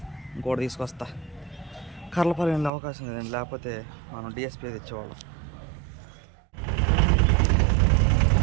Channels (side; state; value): left; drops out; at 2.7 s